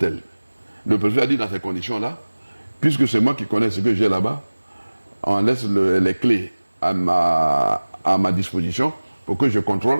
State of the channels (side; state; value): both; inverted; correlation -1.00